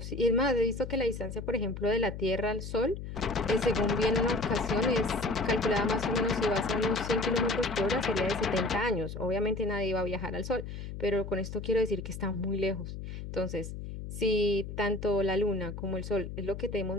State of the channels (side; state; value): left; noise; hum, 8 dB below the sound